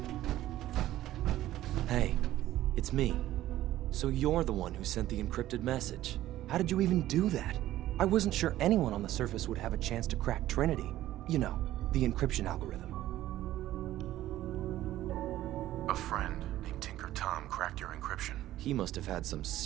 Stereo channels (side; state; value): left; quieter; 14.3 dB